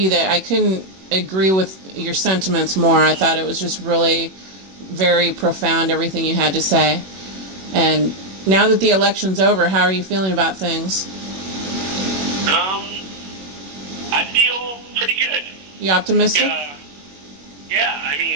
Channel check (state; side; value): late; left; 21 ms